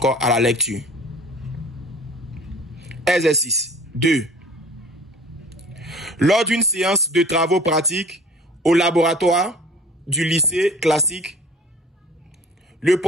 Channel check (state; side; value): normal; both; correlation 0.47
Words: à la lecture. Exercice 2. Lors d'une séance de travaux pratiques au laboratoire du lycée classique, le